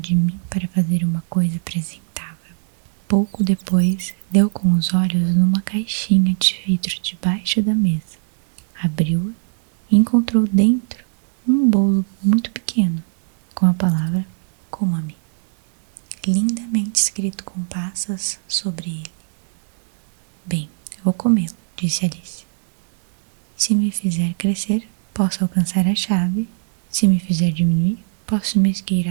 mim para fazer uma coisa apresentável. Pouco depois, deu com os olhos numa caixinha de vidro debaixo da mesa. Abriu-a e encontrou dentro um bolo muito pequeno, com a palavra coma-me, lindamente escrito com passas sobre ele. Bem, eu vou comê-lo, disse Alice. Se me fizer crescer, posso alcançar a chave. Se me fizer diminuir, posso me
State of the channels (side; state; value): left; silent; 64 dB below the other